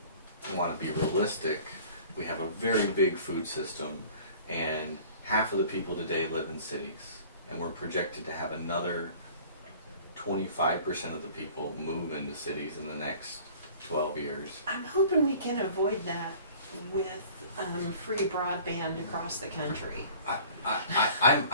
want to be realistic. We have a very big food system, and half of the people today live in cities, and we're projected to have another 25% of the people move into cities in the next 12 years. I'm hoping we can avoid that with free broadband across the country.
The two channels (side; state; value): both; inverted; correlation -0.48